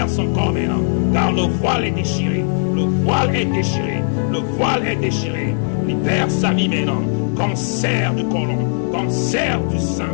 son corps maintenant. Car le voile est déchiré. Le voile est déchiré. Le voile est déchiré. Libère sa vie maintenant. Cancer du côlon, cancer du sein,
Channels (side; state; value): right; silent; digital silence